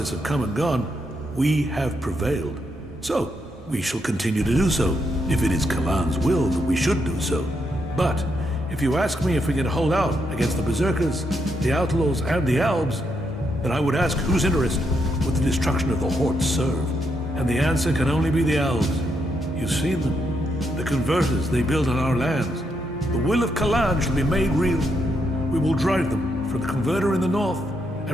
have come and gone, we have prevailed. So, we shall continue to do so, if it is Kalan's will that we should do so. But, if you ask me if we can hold out against the Berserkers, the Outlaws, and the Albs, then I would ask whose interest would the destruction of the Horde serve? And the answer can only be the Albs. You've seen them. The converters they build on our lands. The will of Kalan shall be made real. We will drive them from the converter in the north,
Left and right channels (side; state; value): both; normal; correlation 0.79